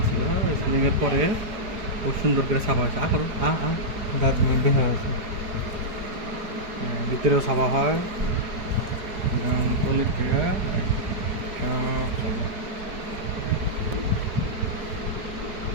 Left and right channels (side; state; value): left; late; 4.8 ms